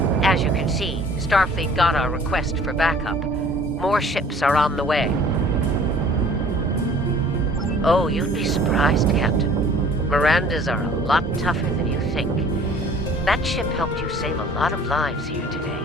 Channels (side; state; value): both; normal; correlation 0.51